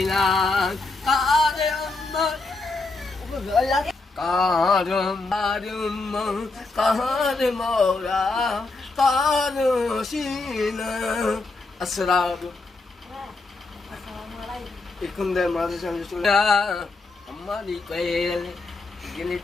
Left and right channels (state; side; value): quieter; right; 3.5 dB